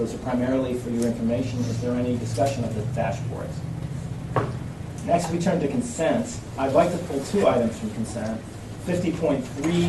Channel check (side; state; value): both; identical; correlation 1.00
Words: are primarily for your information. Is there any discussion of the dashboards? Next, we turn to consent. I'd like to pull 2 items from consent.